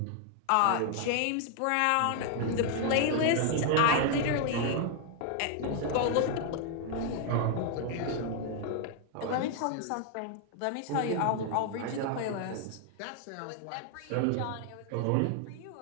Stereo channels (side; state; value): both; different; correlation 0.00